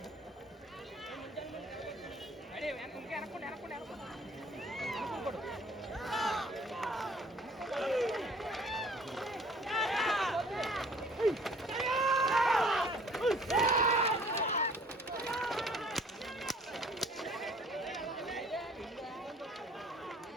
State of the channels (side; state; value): both; normal; correlation 0.54